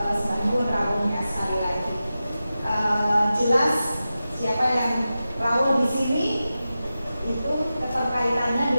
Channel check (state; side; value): inverted; both; correlation -0.93